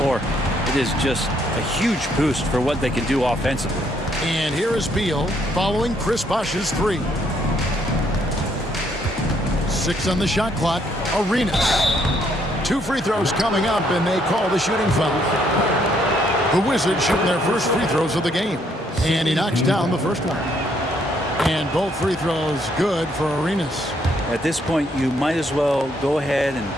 it is just a huge boost for what they can do offensively. And here is Beal following Chris Bosch's 3. 6 on the shot clock. Arenas. 2 free throws coming up, and they call the shooting foul. The Wizards shooting their first free throws of the game. And he knocks down the first one. And both free throws good for Arenas. At this point, you might as well go ahead and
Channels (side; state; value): both; normal; correlation 0.70